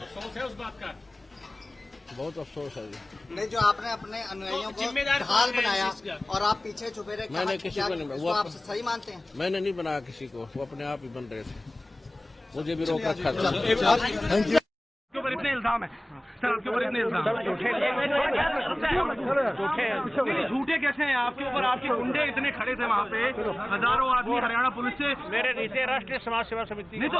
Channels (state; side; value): normal; both; correlation 0.98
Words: है उस बात का? बहुत अफसोस है जी। नहीं, जो आपने अपने अनुयायियों को जिम्मेदार ढाल कौन है बनाया इस चीज़ का? और आप पीछे छुपे रहे, मैंने किसी को नहीं, इसको आप सही मानते हैं? मैंने नहीं बनाया किसी को, वो अपने आप ही बन रहे थे, मुझे भी रोक रखा था। आपके ऊपर इतने इल्जाम है सर, आपके ऊपर इतने इल्जाम झूठे कैसे हैं आपके ऊपर? आपके गुंडे इतने खड़े थे वहाँ पे, हजारों आदमी हरियाणा पुलिस से। मेरे नीचे राष्ट्रीय समाज सेवा समिति। नहीं तो